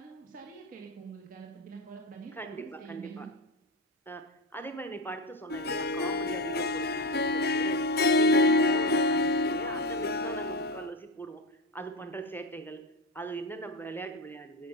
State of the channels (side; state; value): both; normal; correlation 0.15